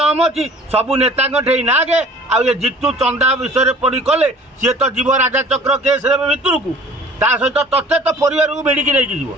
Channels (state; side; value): normal; both; correlation 0.48